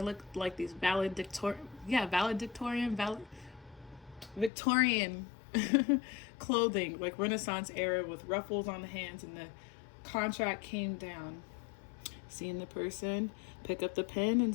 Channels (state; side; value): drops out; right; at 4.5 s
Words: like these Victorian clothing, like Renaissance era with ruffles on the hands, and the contract came down. Seeing the person pick up the pen and